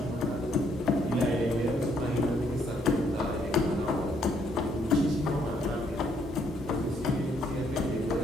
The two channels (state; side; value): normal; both; correlation 0.70